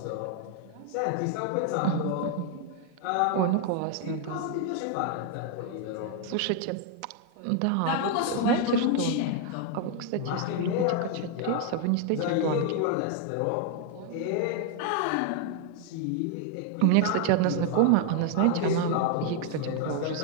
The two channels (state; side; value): different; both; correlation 0.00